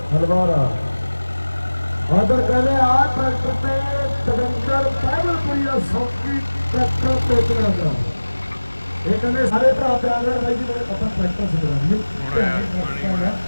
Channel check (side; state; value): both; inverted; correlation -1.00